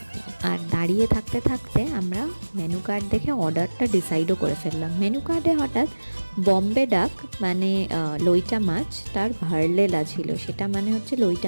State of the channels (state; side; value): inverted; both; correlation -1.00